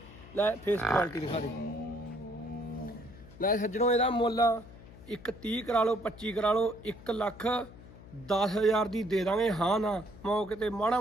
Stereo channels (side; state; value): left; noise; hum, 19 dB below the sound